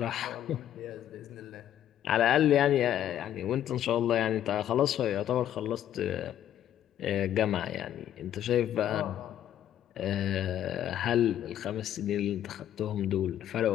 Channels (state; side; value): quieter; right; 11.1 dB